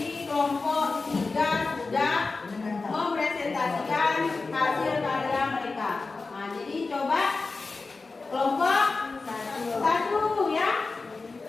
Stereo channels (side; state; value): right; quieter; 3.9 dB